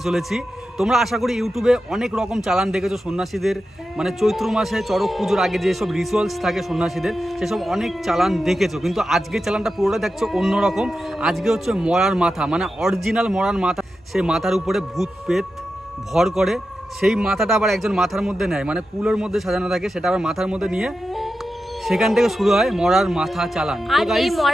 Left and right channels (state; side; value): normal; both; correlation 0.91